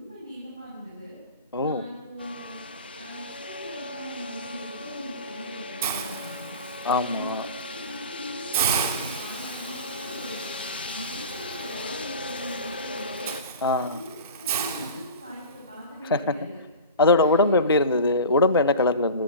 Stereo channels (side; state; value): both; inverted; correlation -0.34